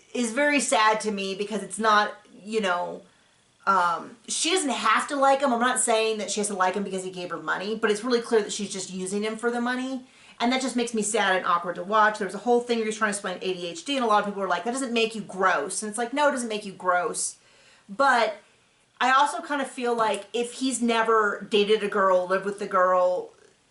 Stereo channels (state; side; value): identical; both; correlation 1.00